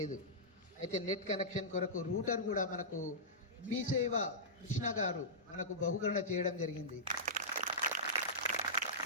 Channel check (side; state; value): both; normal; correlation -0.16